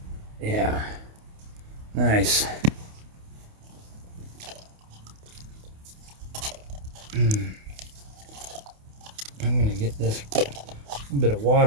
Yeah. Nice. I'm going to get this bit of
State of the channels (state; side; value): late; left; 28 ms